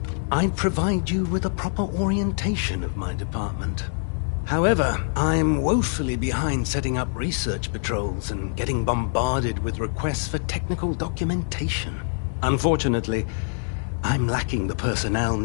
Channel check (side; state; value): right; silent; 62 dB below the other